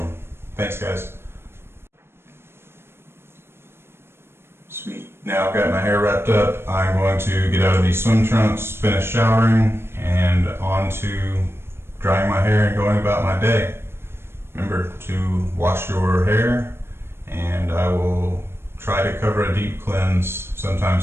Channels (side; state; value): left; late; 0.12 ms